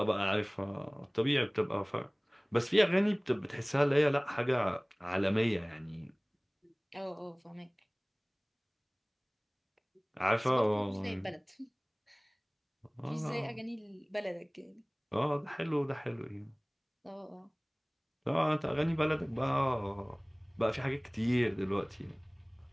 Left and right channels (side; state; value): both; identical; correlation 1.00